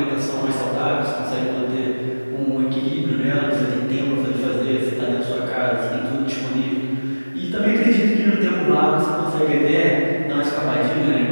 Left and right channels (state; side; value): inverted; both; correlation -1.00